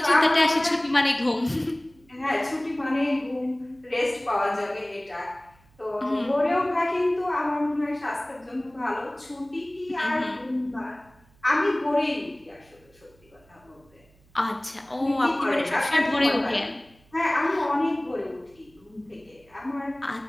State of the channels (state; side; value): noise; right; hum, 30 dB below the sound